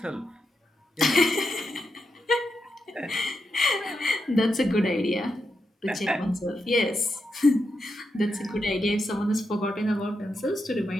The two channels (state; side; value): normal; both; correlation 0.86